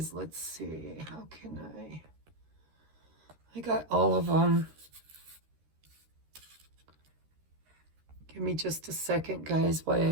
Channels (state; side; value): late; left; 13 ms